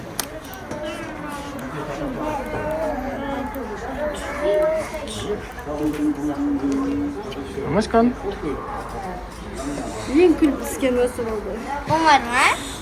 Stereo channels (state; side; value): identical; both; correlation 1.00